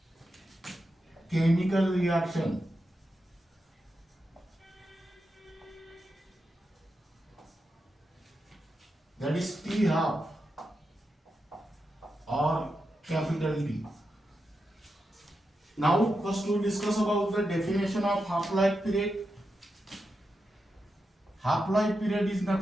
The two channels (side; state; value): both; normal; correlation 0.88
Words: chemical reaction. That is T half or capital T. Now, first we discuss about the definition of half-life period. Half-life period is